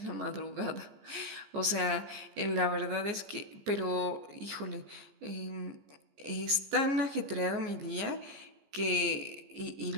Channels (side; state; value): left; late; 15 ms